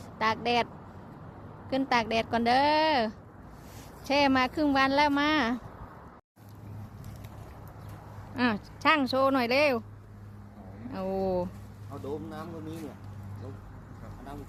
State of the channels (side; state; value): both; identical; correlation 1.00